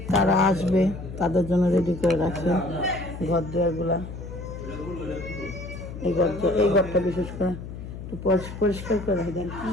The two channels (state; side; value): noise; left; hum, 10 dB below the sound